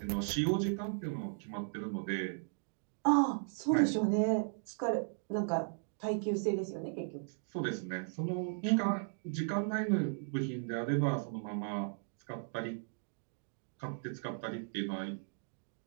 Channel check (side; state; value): left; silent; digital silence